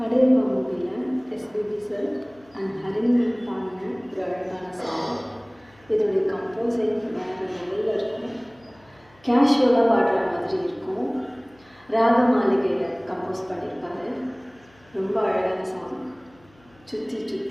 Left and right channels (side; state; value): left; noise; hum, 30 dB below the sound